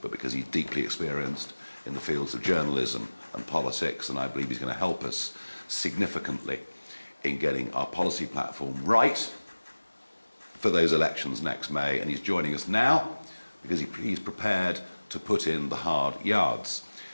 but because he's deeply experienced in the fields of journalism and politics, and I believe he's going to help us significantly in getting our policy platform right for those elections next May. And he's joining us now because he's prepared to put in the hard yards.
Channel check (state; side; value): inverted; both; correlation -1.00